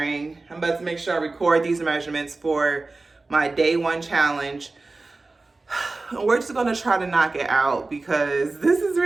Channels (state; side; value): quieter; left; 3.4 dB